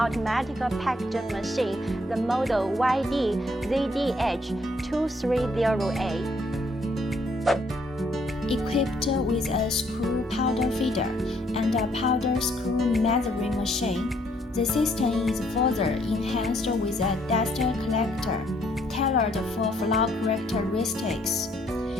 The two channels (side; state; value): both; normal; correlation 0.68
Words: packaging machine, the model YD-ZDH230A. Equipped with a screw powder feeder and a powder screw measuring machine, the system is further enhanced with a dust collector tailored for flow characteristics.